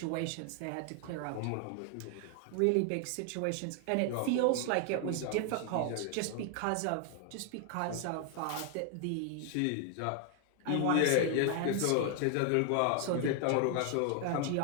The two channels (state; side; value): different; both; correlation 0.00